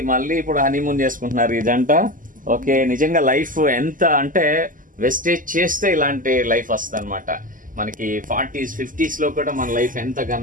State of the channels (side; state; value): left; late; 0.39 ms